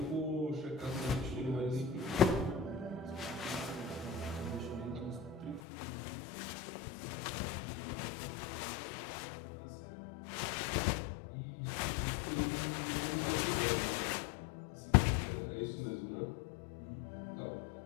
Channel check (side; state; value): right; drops out; at 5.6 s